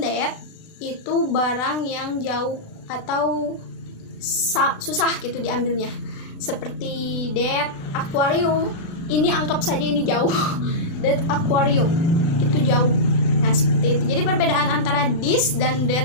that itu barang yang jauh atau susah gitu diambilnya. Seperti that aquarium, ini anggap saja ini jauh. That aquarium itu jauh. Nah, seperti itu. Jadi perbedaan antara this dan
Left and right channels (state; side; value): late; right; 37 ms